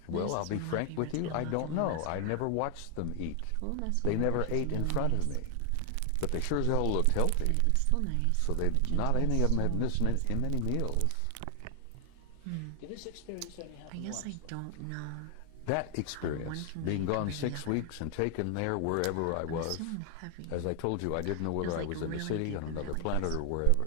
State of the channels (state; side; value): different; both; correlation 0.00